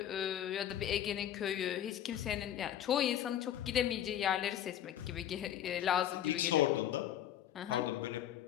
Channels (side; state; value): right; quieter; 11.0 dB